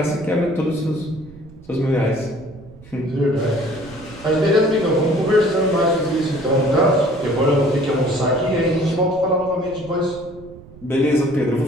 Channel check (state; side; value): noise; right; rumble, 20 dB below the sound